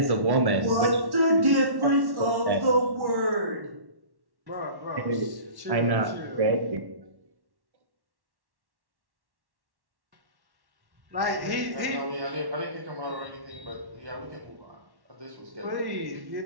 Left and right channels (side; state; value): left; late; 1.1 ms